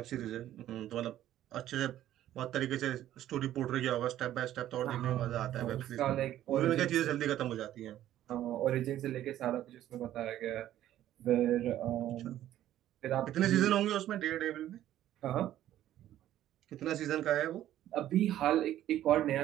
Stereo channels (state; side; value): quieter; left; 12.7 dB